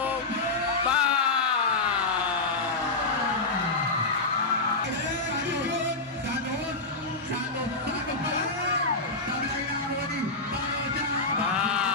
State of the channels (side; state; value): right; quieter; 3.3 dB